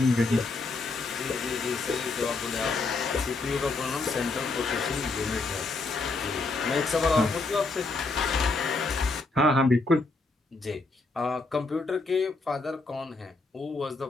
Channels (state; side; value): quieter; right; 3.6 dB